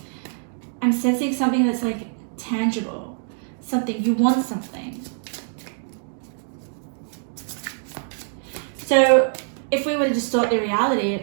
I'm sensing something that's, like, tangible. Something, you want something. So if we were to distort the reality,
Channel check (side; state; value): left; silent; digital silence